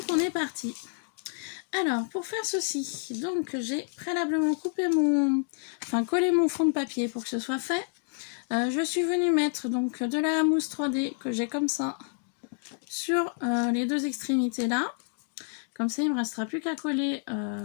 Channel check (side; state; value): right; silent; 57 dB below the other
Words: on est parti. Alors pour faire ceci, donc j'ai préalablement coupé collé mon fond de papier pour que ce soit fait. Je suis venue mettre donc de la mousse 3D que j'ai comme ça sur les deux extrémités là. Comme ça il ne me restera plus qu'à coller